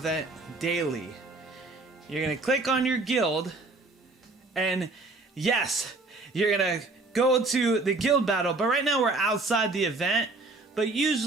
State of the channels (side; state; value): left; quieter; 3.3 dB